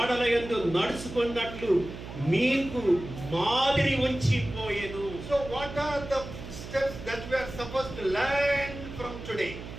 యందు నడుచుకున్నట్లు మీకు మాదిరి ఉంచిపోయెను. So what are the steps that we are supposed to learn from today?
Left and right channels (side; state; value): right; noise; hum, 11 dB below the sound